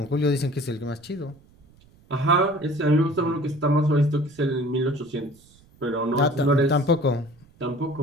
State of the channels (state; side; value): noise; right; rumble, 28 dB below the sound